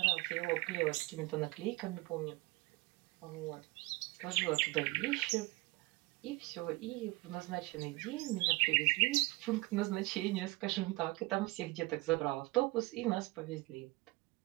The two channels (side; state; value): left; quieter; 22.7 dB